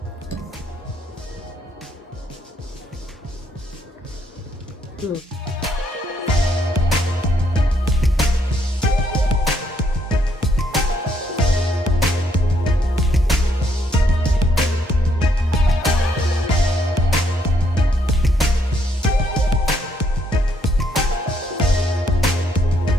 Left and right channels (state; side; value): normal; both; correlation 0.72